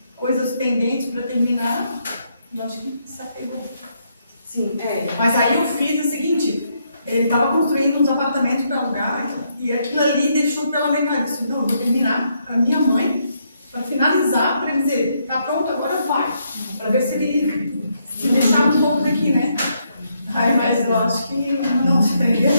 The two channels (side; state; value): both; inverted; correlation -0.76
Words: coisas pendentes para terminar, e eu acho que se apegou. Sim, Mas aí eu fiz o seguinte, ele estava construindo uns apartamentos para alugar, e aquilo ali deixou pela metade. Eu disse, não, eu vou terminar para minha mãe, para finalizar, para ele dizer, tá pronto, agora vai. Para ver se ele se deixava um pouco daqui, né? Mas eu acho que não se prendeu